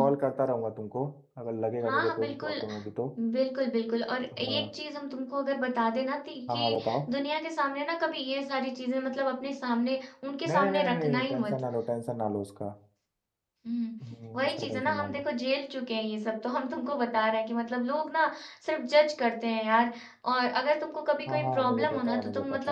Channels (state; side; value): identical; both; correlation 1.00